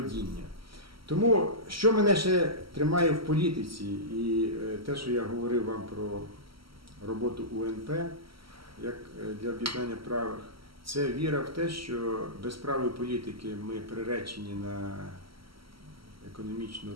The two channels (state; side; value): late; left; 0.75 ms